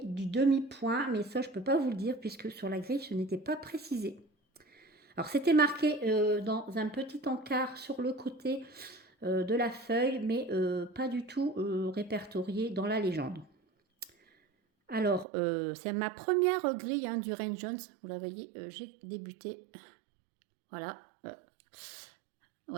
du demi-point, mais ça, je ne peux pas vous le dire, puisque sur la grille, ce n'était pas précisé. Alors, c'était marqué dans un petit encart sur le côté de la feuille, mais pas du tout répertorié dans la légende. Alors, c'est ma première grille hein, du Rain Jones. Vous la voyez, j'ai débuté. Voilà.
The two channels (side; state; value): left; drops out; at 15.2 s